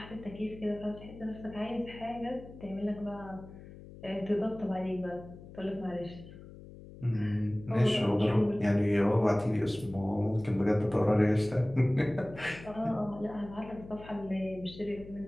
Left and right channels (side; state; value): left; noise; hum, 17 dB below the sound